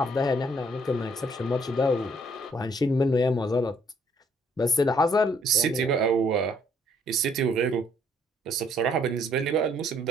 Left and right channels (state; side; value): normal; both; correlation 0.65